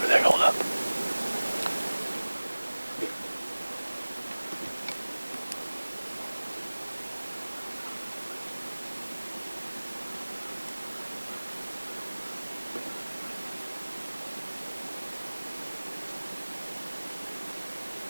there. Hold up.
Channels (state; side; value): inverted; both; correlation -1.00